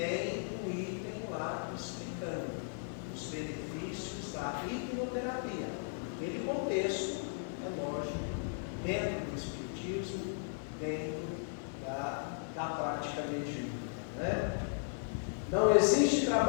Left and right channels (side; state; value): right; silent; digital silence